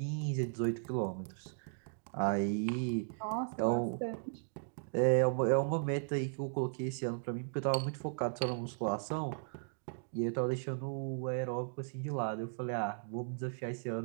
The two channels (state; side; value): silent; left; digital silence